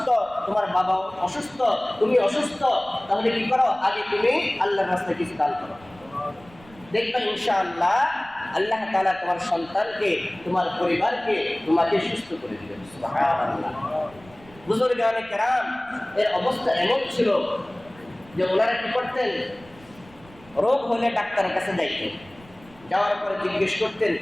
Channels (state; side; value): noise; right; rumble, 24 dB below the sound